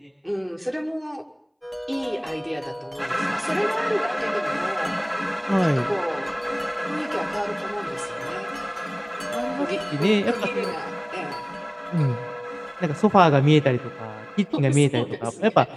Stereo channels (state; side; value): identical; both; correlation 1.00